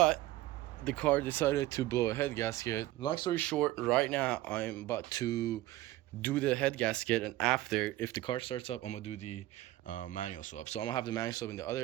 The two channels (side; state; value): left; quieter; 16.4 dB